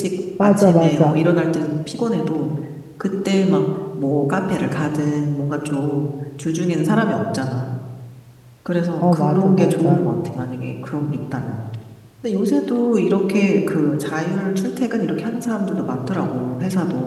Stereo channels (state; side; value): identical; both; correlation 1.00